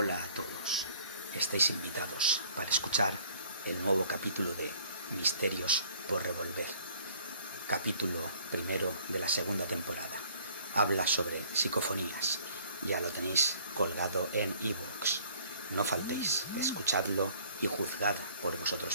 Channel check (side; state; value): both; inverted; correlation -0.56